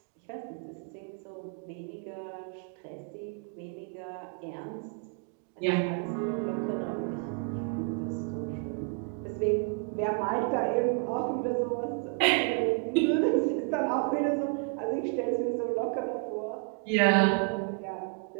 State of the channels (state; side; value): quieter; left; 38.6 dB